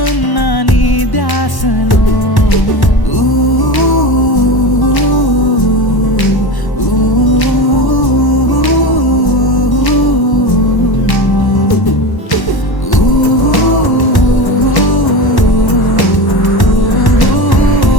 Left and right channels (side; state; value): right; late; 1.1 ms